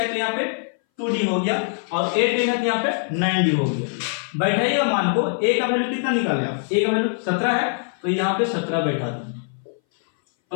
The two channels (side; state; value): right; silent; 61 dB below the other